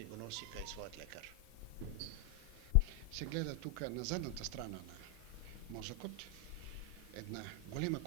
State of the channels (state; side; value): quieter; right; 3.4 dB